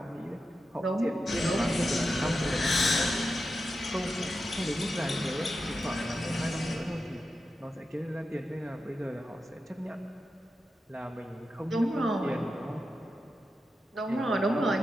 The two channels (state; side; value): normal; both; correlation 0.90